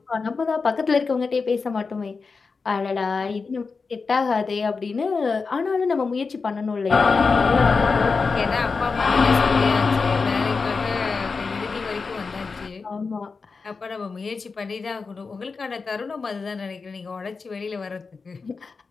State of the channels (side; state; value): right; quieter; 4.6 dB